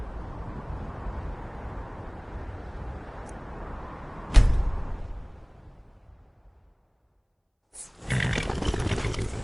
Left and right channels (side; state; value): both; identical; correlation 1.00